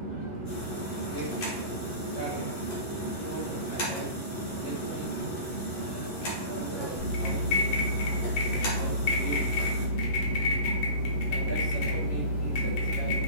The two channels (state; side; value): late; right; 11 ms